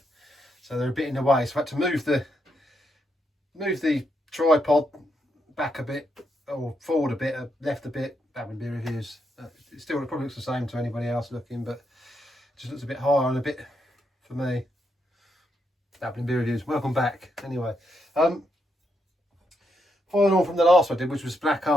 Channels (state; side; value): normal; both; correlation 0.80